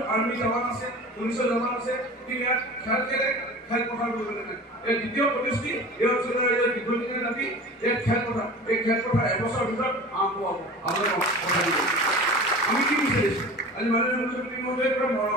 আৰ্মি জৱান আছে পুলিচৰ জৱান আছে কিন্তু ইয়াত খেলপথাৰ কৰিবলৈ নাই এই দ্বিতীয় প্ৰতিশ্ৰুতি এই অঞ্চলৰ ৰাইজৰ দীৰ্ঘদিনীয়া দাবী এই খেলপথাৰ এবছৰৰ ভিতৰত আৰম্ভ হ'ব আপোনালোকক কথা দিব আমি কি বিচাৰিছোঁ আজি মাননীয় মুখ্যমন্ত্ৰী মহোদয়ৰ পৰা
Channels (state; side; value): normal; both; correlation 0.37